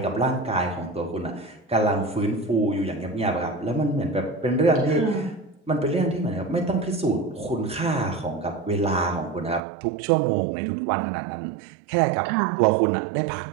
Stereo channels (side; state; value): left; drops out; at 9.6 s